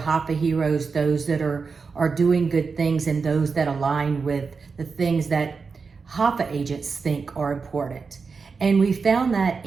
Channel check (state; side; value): quieter; left; 4.9 dB